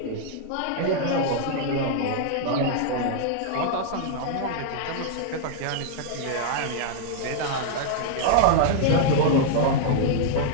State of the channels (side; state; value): both; different; correlation -0.01